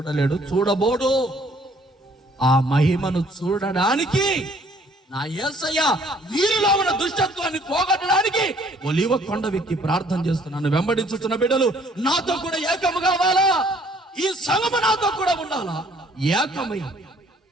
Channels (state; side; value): normal; both; correlation 0.60